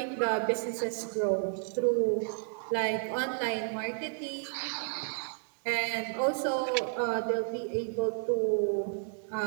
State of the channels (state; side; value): silent; left; digital silence